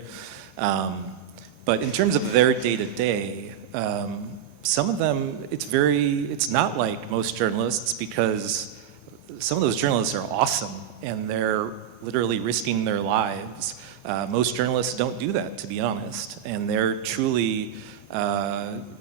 But in terms of their day-to-day, some of them, it's not like most journalists, because some of those journalists are awesome and they're literally risking their lives. Most journalists don't do that, to be honest, and they're truly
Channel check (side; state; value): left; quieter; 9.2 dB